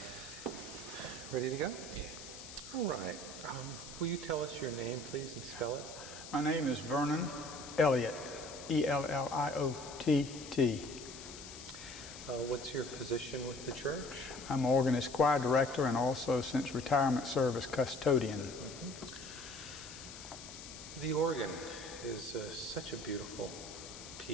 Ready to go? Yeah. All right. Will you tell us your name, please, and spell it? My name is Vernon Elliot, Elliott. What's your position with the church? I'm organist choir director and also, since retirement, service custodian. The organ is such a beautiful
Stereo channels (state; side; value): noise; left; hiss, 13 dB below the sound